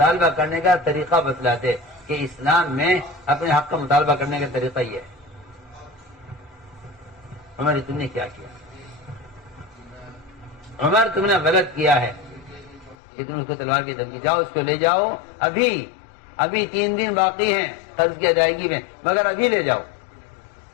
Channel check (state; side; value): drops out; right; at 13.0 s